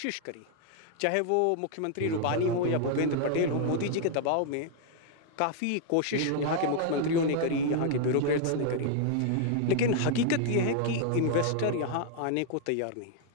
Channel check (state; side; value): different; both; correlation 0.00